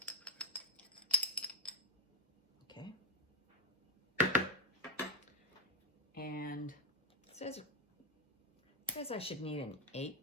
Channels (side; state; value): both; normal; correlation 0.07